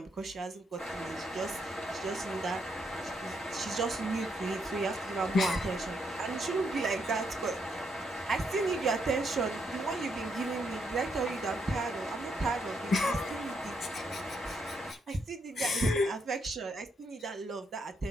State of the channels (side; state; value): both; normal; correlation 0.77